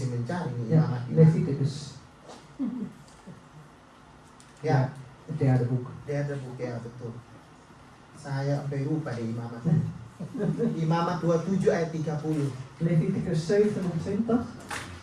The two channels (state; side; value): identical; both; correlation 1.00